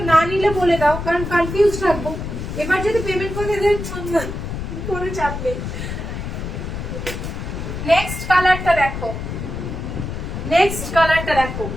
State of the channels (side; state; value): left; noise; rumble, 6 dB below the sound